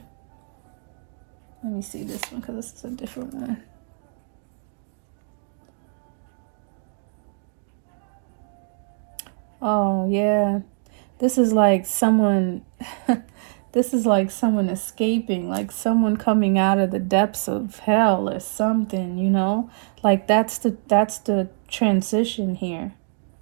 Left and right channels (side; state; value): left; silent; digital silence